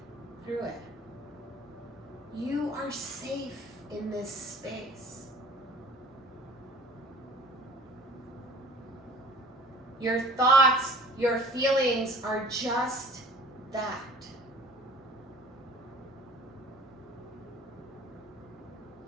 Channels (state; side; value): normal; both; correlation 0.46